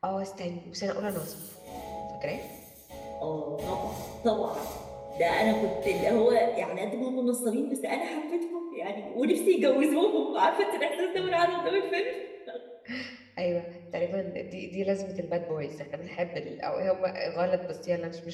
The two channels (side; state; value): both; identical; correlation 1.00